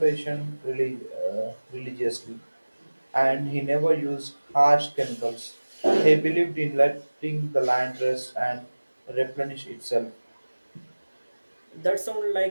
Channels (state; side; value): inverted; both; correlation -1.00